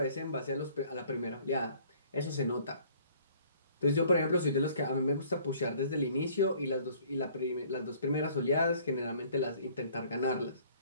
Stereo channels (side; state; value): both; inverted; correlation -0.56